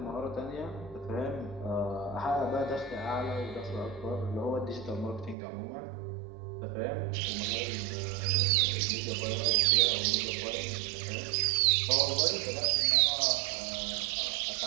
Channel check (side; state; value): left; drops out; at 5.4 s